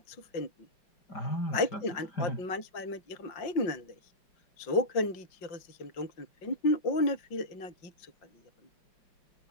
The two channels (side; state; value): right; late; 5.6 ms